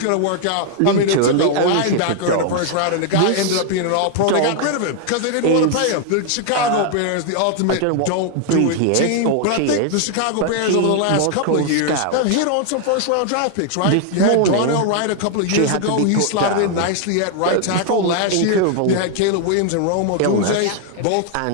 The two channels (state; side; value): different; both; correlation 0.00